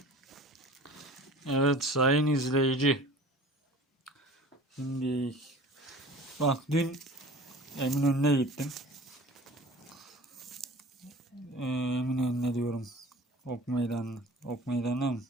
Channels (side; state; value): both; normal; correlation 0.43